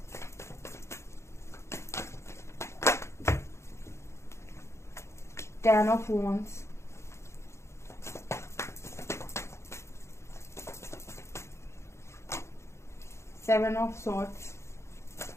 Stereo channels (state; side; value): late; right; 0.13 ms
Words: ten of wands, seven of swords,